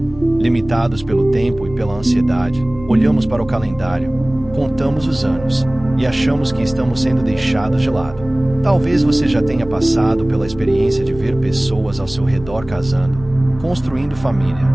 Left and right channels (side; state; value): left; noise; rumble, 17 dB below the sound